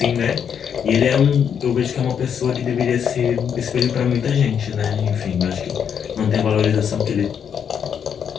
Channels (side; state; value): right; quieter; 7.8 dB